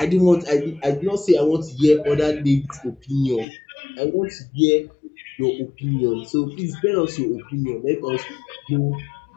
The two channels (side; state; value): right; drops out; at 3.5 s